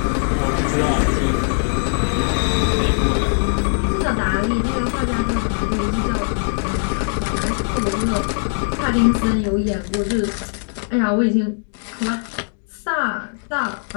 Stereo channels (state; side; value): silent; right; digital silence